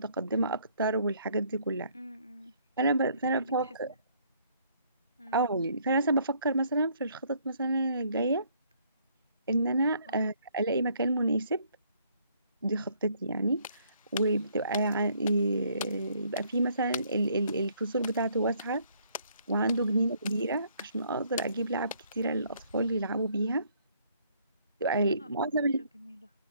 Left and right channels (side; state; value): both; inverted; correlation -0.65